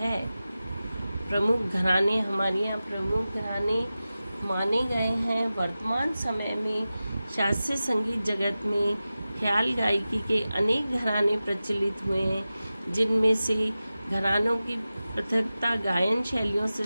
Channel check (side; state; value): both; inverted; correlation -0.95